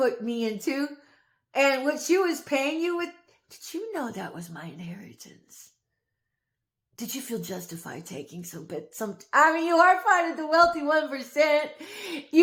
me into and what she was paying you with. Did you know that was my inheritance? Did you feel justified taking I mean, you are part of the wealthy 1%.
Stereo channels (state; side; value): identical; both; correlation 1.00